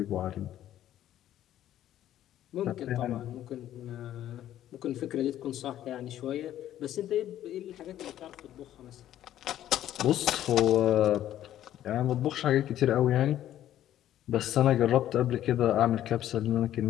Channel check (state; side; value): quieter; right; 12.2 dB